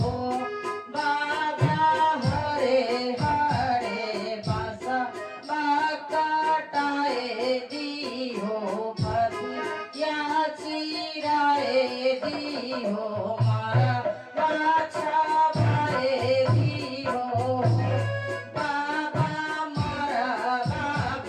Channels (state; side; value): identical; both; correlation 1.00